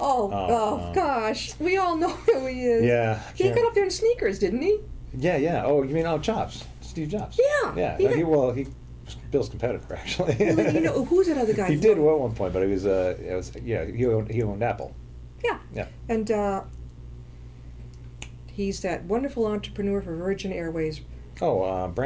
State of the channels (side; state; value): both; identical; correlation 1.00